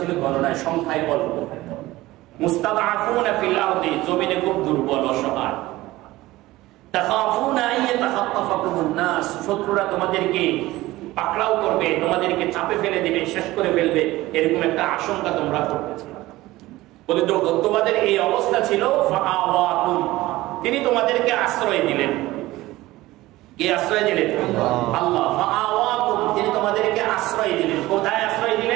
গণনায় সংখ্যায় অল্প, মুস্তাদআফুনা ফিল আরদি, জমিনে খুব দুর্বল অসহায়, তাখাফুনা আন ইয়াতাখাত্তাফাকুমুন নাস, শত্রুরা তোমাদেরকে পাকড়াও করবে, তোমাদেরকে চাপে ফেলে দিবে, শেষ করে ফেলবে, এরকম একটা আশঙ্কা তোমরা করতেছিলে। বলে তোমাদের এই অবস্থা ছিল, ফাআওয়াকুম, তিনি তোমাদেরকে আশ্রয় দিলেন। কে আশ্রয় দিলেন? আল্লাহ। ফাআওয়াকুম, তিনি তোমাদেরকে আশ্রয় দিলেন। কোথায় আশ্রয়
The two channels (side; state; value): left; quieter; 17.9 dB